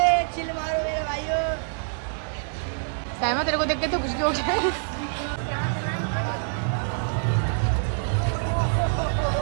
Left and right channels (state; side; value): silent; left; digital silence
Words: चिल मारो मेरे भाइयों। साइमा तेरे को देख के तो खुशी हो गया है।